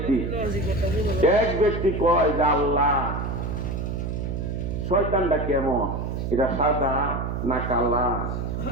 ব্যক্তি কয় যে আল্লাহ শয়তানটা কেমন, এটা সাদা না কালা,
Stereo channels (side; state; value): right; noise; hum, 3 dB below the sound